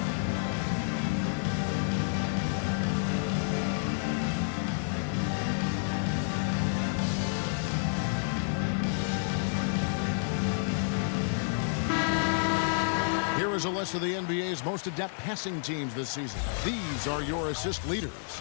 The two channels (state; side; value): silent; right; digital silence